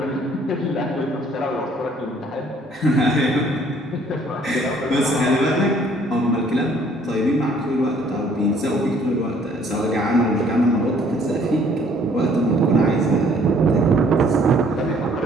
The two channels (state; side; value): normal; both; correlation 0.60